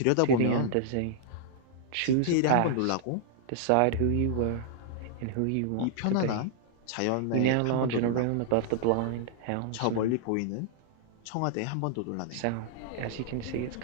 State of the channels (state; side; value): different; both; correlation -0.01